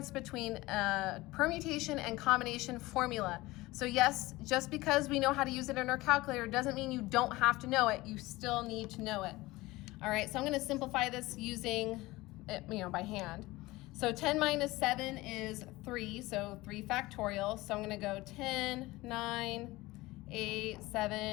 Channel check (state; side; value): quieter; right; 19.9 dB